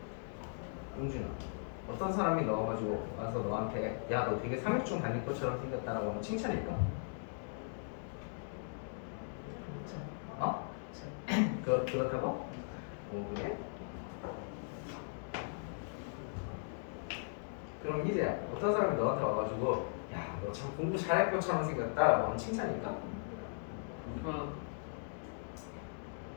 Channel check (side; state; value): right; silent; digital silence